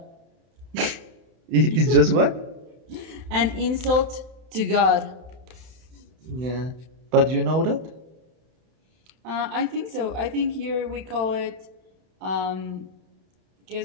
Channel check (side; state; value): left; late; 31 ms